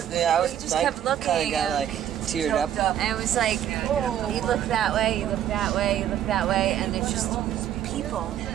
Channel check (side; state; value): left; quieter; 10.7 dB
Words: just kept looking. Kind of got like teared up. And it was like, you look that way, you look that way, you look that way, and there's just people.